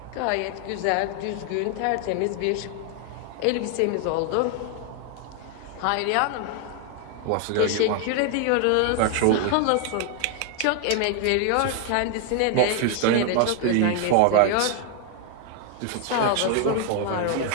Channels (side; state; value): both; different; correlation 0.00